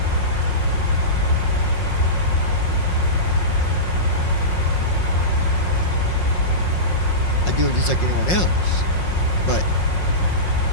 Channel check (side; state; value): right; late; 5.5 ms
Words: I do it just like anyone else. But,